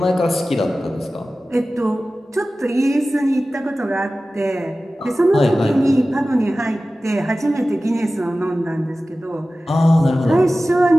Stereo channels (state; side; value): normal; both; correlation 0.96